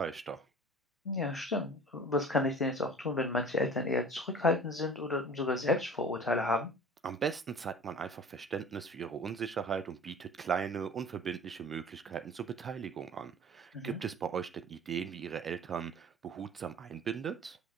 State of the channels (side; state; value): both; normal; correlation 0.42